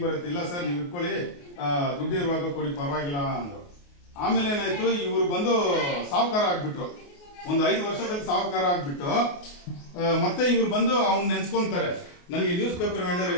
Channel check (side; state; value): right; late; 28 ms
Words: ಬರುತ್ತೆ? ಇಲ್ಲ ಸರ್, ನೀವು ಇಟ್ಕೊಳ್ಳಿ, ದುಡ್ಡು ಇರುವಾಗ ಕೊಡಿ, ಪರವಾಗಿಲ್ಲ ಅಂದ್ರು. ಆಮೇಲೆ ಏನಾಯ್ತು, ಇವ್ರು ಬಂದು ಸಾಹುಕಾರ ಆಗ್ಬಿಟ್ರು. ಒಂದು 5 ವರ್ಷದಲ್ಲಿ ಸಾಹುಕಾರ ಆಗ್ಬಿಟ್ಟು ಮತ್ತೆ ಇವ್ರು ಬಂದು ಅವ್ನು ನೆನ್ಸ್ಕೊಂತಾರೆ, ನನಗೆ ನ್ಯೂಸ್ ಪೇಪರ್ ವೆಂಡರ್